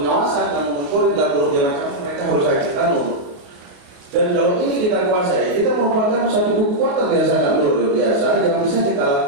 kanun monitoring, dan berbagai macam mereka harus ada kanun. Dan kalau ini kita kuasai, kita merupakan satu kekuatan yang sangat luar biasa yang bisa kita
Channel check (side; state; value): left; late; 28 ms